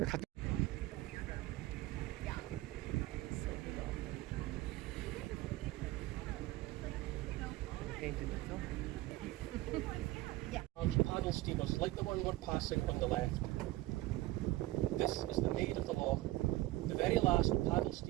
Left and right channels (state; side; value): quieter; left; 18.1 dB